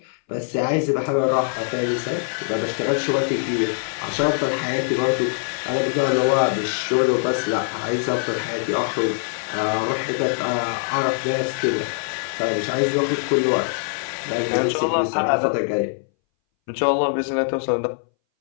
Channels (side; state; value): right; silent; 61 dB below the other